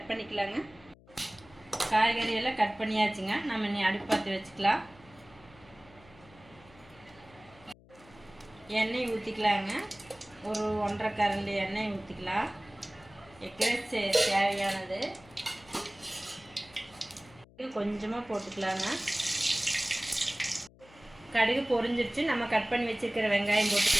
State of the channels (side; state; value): left; noise; hum, 25 dB below the sound